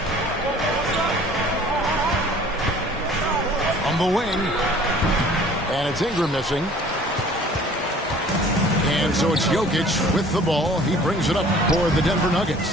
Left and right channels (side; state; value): both; normal; correlation 0.50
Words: On the wing. And it's Ingram missing. And so it's Jokic with the ball. He brings it up for the Denver